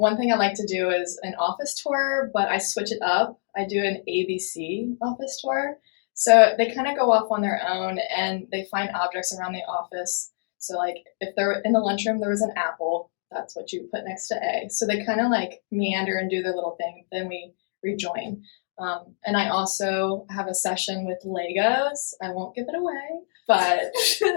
thing I like to do is an office tour, but I switch it up. I do an ABC office tour. So they kind of go off on their own and they find objects around the office. So like if they're in the lunchroom, there was an apple, that's what you put next to A. So they kind of like meander and do their little thing. Then we rejoin. And I also have a session with Legos. I won't give it away, but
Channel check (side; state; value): right; silent; digital silence